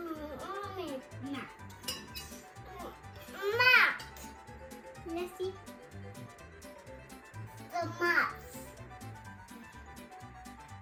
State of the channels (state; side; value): identical; both; correlation 1.00